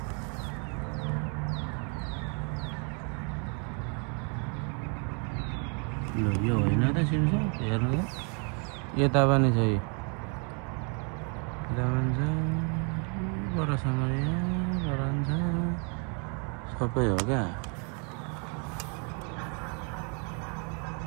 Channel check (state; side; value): quieter; left; 37.7 dB